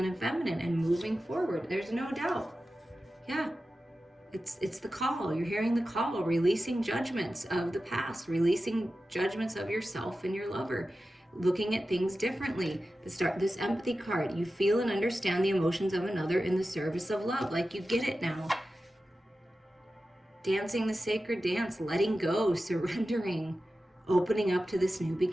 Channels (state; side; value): normal; both; correlation 0.93